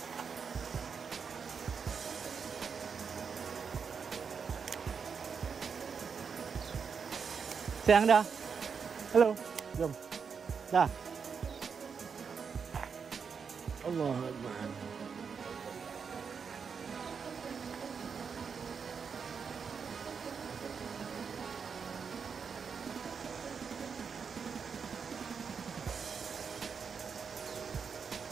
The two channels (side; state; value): left; quieter; 6.1 dB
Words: Sayang dah. Halo. Jom. Dah. Allah Akbar.